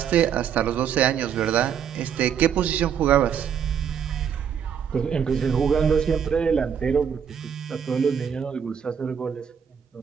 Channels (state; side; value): quieter; left; 7.9 dB